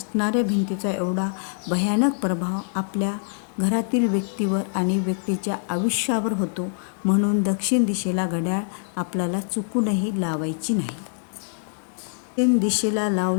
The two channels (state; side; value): silent; right; digital silence